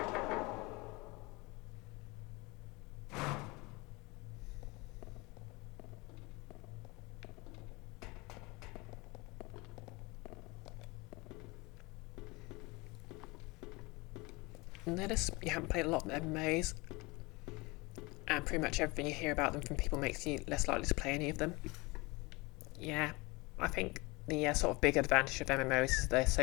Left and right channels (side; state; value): right; quieter; 24.7 dB